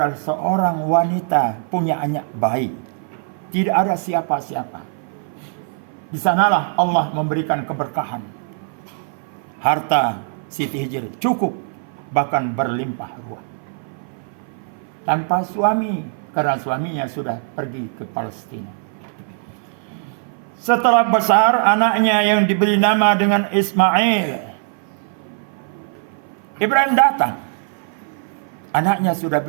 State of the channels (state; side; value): silent; left; 57 dB below the other